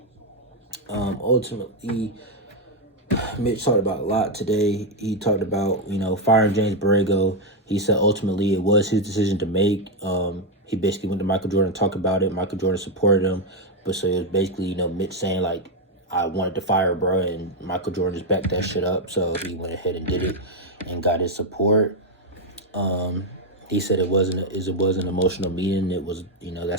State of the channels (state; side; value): normal; both; correlation 0.03